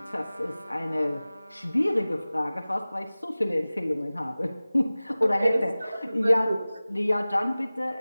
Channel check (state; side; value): inverted; both; correlation -0.98